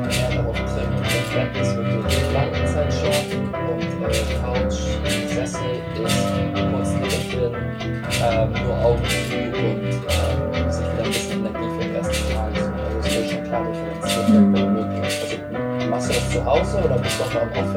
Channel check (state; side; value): identical; both; correlation 1.00